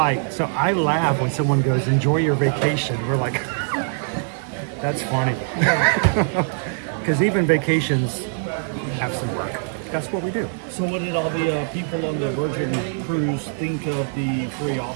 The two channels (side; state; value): left; silent; digital silence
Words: so I laugh when someone goes, enjoy your vacation. We're like, that's funny. Because even vacations have some work. That's what we do. So what did all the people on the Virgin cruise think of the free